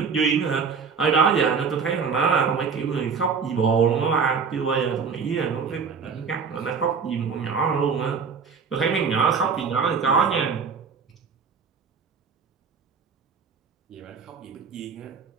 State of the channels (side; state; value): left; quieter; 5.7 dB